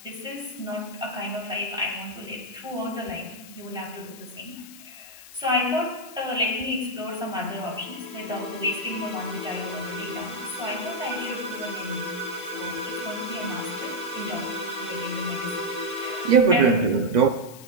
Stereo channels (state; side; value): noise; left; hiss, 17 dB below the sound